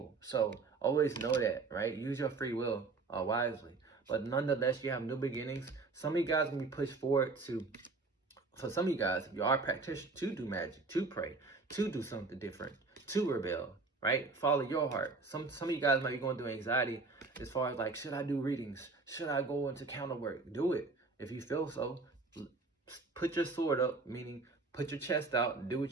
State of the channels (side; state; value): left; quieter; 3.9 dB